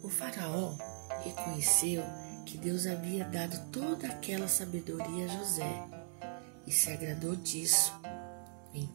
O faraó reconheceu que Deus havia dado toda aquela sabedoria a José e se agradou disso.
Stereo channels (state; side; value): silent; left; digital silence